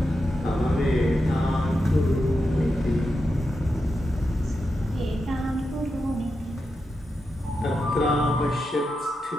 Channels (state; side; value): normal; both; correlation 0.88